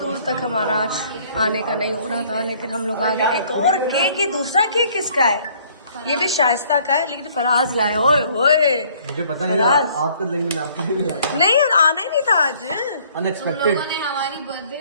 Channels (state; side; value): inverted; both; correlation -0.60